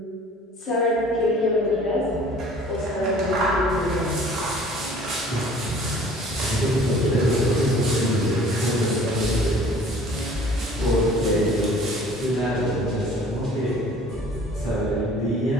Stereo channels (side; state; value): both; normal; correlation 0.50